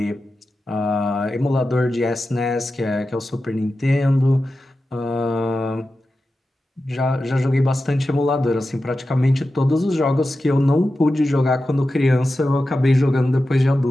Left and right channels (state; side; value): normal; both; correlation 0.92